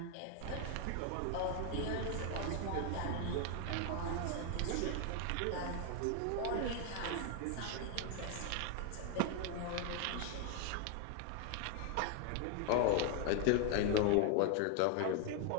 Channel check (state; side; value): different; both; correlation 0.00